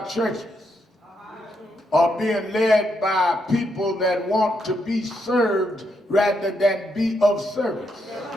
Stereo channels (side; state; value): both; normal; correlation 0.79